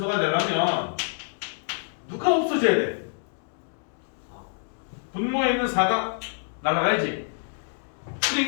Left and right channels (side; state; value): right; silent; digital silence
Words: 되려면 누가 없어져야 돼? 분모에 있는 4가 날아가야지.